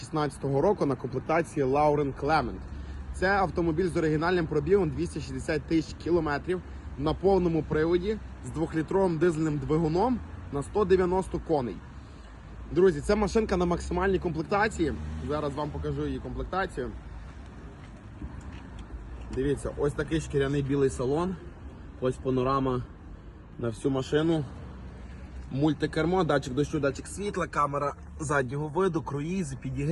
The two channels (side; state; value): both; identical; correlation 1.00